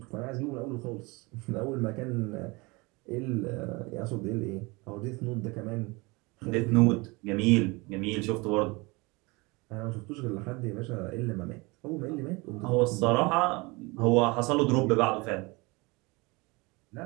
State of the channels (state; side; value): quieter; left; 25.6 dB